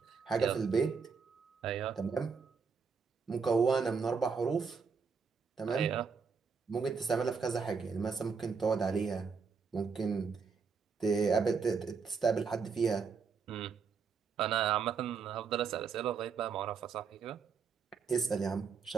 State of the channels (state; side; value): quieter; left; 5.6 dB